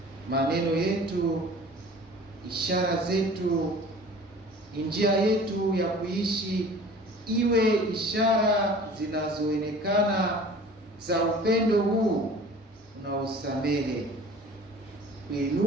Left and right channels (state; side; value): normal; both; correlation 0.45